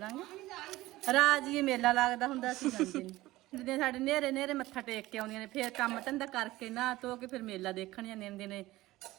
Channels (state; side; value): quieter; left; 17.6 dB